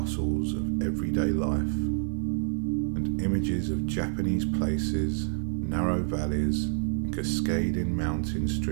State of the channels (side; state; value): left; silent; 59 dB below the other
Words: of everyday life, and images of Japanese places, narrow valleys, and cascading mountain